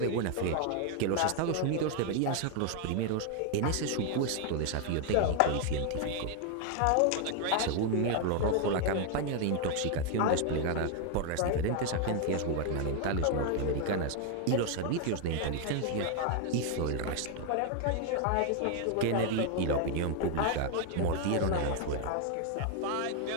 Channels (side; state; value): both; different; correlation 0.01